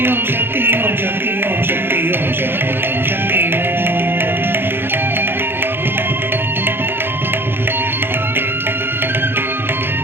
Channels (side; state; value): left; late; 0.10 ms